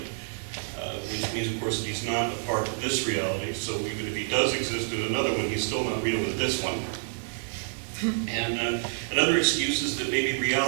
which means, of course, that he's not a part of this reality. So even if he does exist in another one, he's still not real in this one. And another excuse is that maybe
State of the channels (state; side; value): silent; left; digital silence